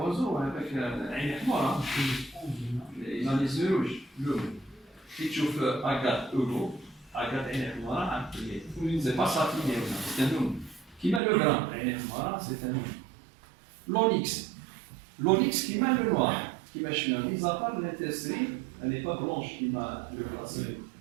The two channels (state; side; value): drops out; left; at 11.2 s